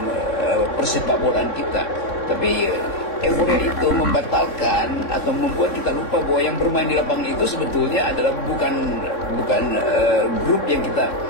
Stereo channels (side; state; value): right; late; 3.7 ms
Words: persepak bolaan kita. Tapi euforia itu membatalkan atau membuat kita lupa bahwa yang bermain di lapangan itu sebetulnya adalah bukan grup yang kita